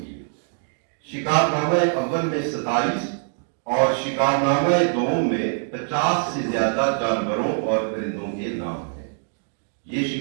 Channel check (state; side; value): silent; left; 61 dB below the other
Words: شکار نامہ اول میں 27 اور شکار نامہ دوم میں 50 سے زیادہ جانوروں اور پرندوں کے نام ہیں۔ یہ